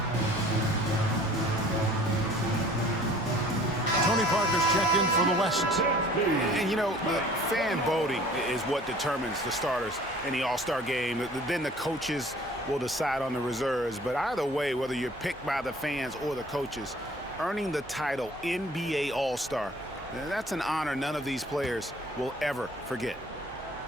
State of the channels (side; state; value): right; noise; hum, 26 dB below the sound